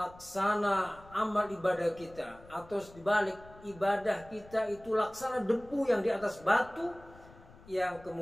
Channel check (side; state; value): left; noise; rumble, 22 dB below the sound